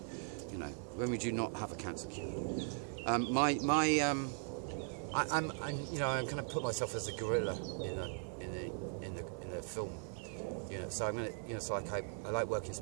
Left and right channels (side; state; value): left; silent; 52 dB below the other